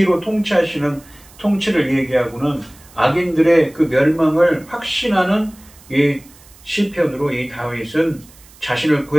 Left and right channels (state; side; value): noise; right; hiss, 25 dB below the sound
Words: 통치하시는 통치를 얘기하고는 악인들의 그 멸망을 확신하는 이 시편으로 이 다윗은 자신을